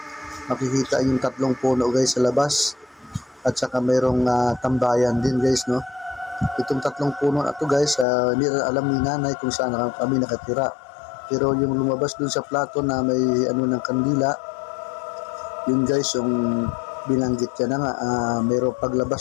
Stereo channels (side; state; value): right; drops out; at 8.1 s